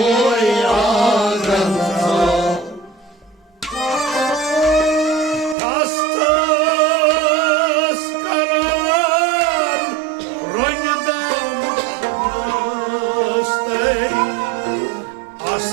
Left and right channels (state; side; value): drops out; left; at 5.6 s